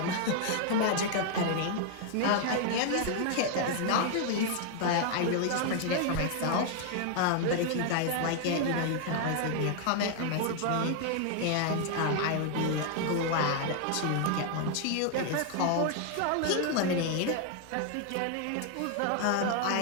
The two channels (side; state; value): both; different; correlation 0.00